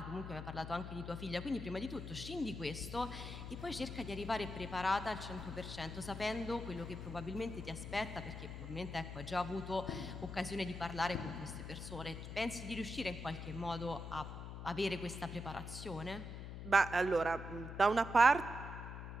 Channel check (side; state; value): left; noise; hum, 8 dB below the sound